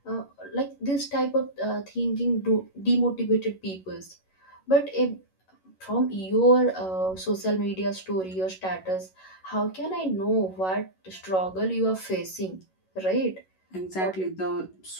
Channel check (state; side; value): late; right; 11 ms